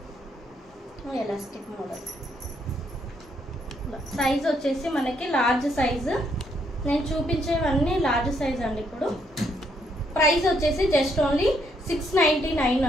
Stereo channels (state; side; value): normal; both; correlation 0.72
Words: Elastic model. సైజ్ వచ్చేసి మనకి లార్జ్ సైజు. నేను చూపించేవన్నీ లార్జ్ సైజ్ అండి. ఇప్పుడు ప్రైస్ వచ్చేసి జస్ట్ ఓన్లీ 699